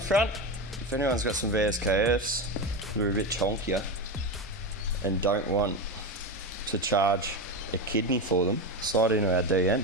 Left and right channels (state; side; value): normal; both; correlation 0.19